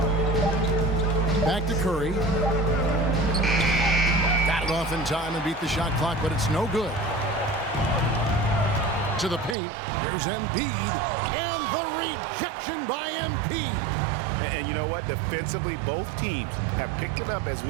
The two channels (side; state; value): left; drops out; at 9.6 s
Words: Back to Curry. Got it off in time and beat the shot clock, but it's no good. To the paint. Here's Embiid. And the rejection by Embiid. And you know what? Defensively, both teams have picked it up as